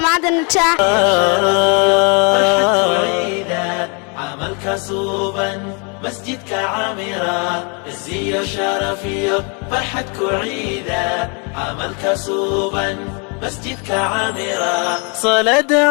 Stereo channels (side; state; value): right; quieter; 35.1 dB